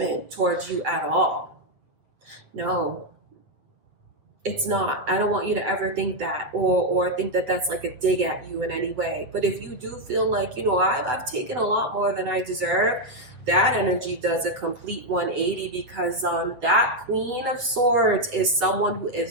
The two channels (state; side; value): late; left; 8.0 ms